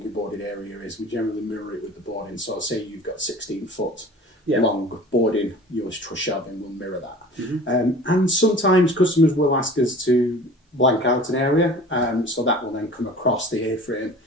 your boarded area is, we generally mirror it with the boarding. So say you've got 16 foot long boarding, your truss shelving will mirror that. Mm-hmm. And sometimes customers will ask us to blank out an area, so that will then come across the A-frame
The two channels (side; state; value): both; normal; correlation 0.43